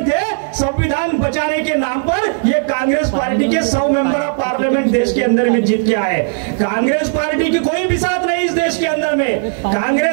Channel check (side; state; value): left; silent; digital silence